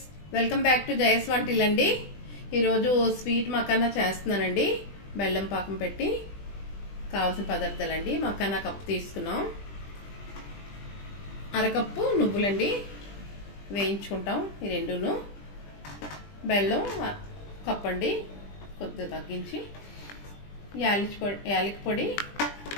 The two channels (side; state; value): right; late; 20 ms